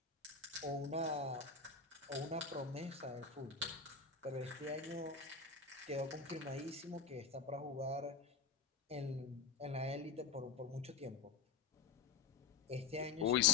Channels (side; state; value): right; quieter; 5.9 dB